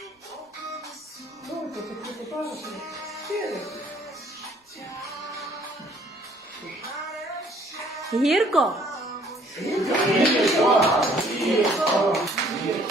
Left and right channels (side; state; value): both; normal; correlation 0.60